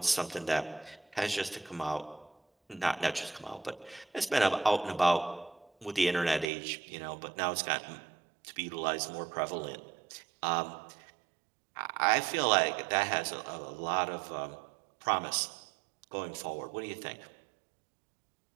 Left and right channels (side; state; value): left; drops out; at 6.5 s